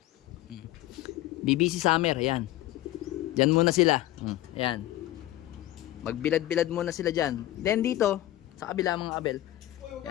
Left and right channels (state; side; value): quieter; right; 15.0 dB